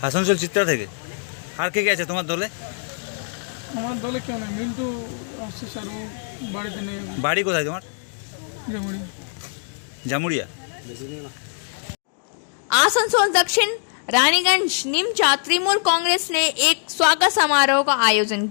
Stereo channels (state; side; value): silent; right; digital silence